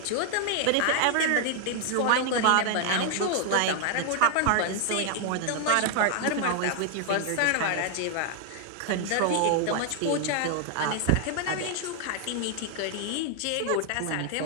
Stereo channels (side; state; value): both; different; correlation 0.00